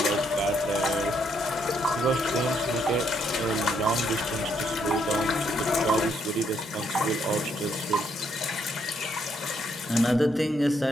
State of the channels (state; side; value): normal; both; correlation 0.73